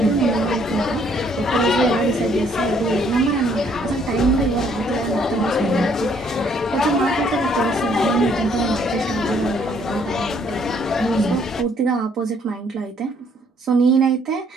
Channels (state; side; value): normal; both; correlation 0.65